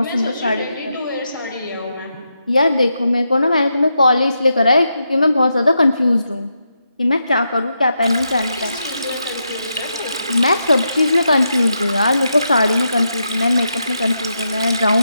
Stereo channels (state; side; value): inverted; both; correlation -0.84